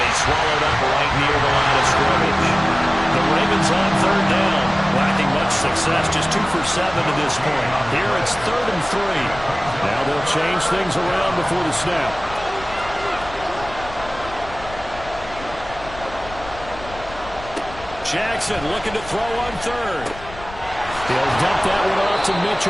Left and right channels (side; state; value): left; noise; rumble, 15 dB below the sound